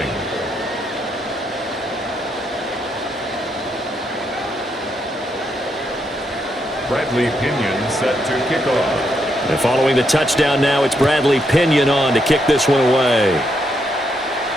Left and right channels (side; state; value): both; normal; correlation 0.78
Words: Bradley Pinion set to kick off. And following the touchdown now, it's Bradley Pinion on to kick this one away.